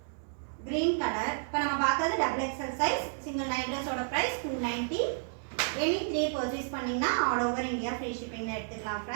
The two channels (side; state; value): left; silent; 57 dB below the other